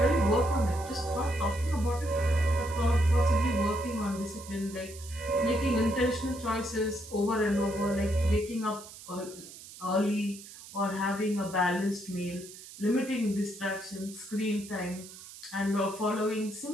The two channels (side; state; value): right; noise; hiss, 16 dB below the sound